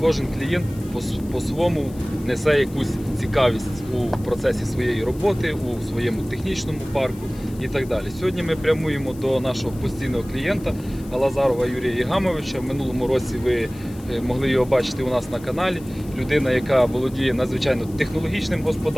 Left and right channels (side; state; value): left; noise; hiss, 22 dB below the sound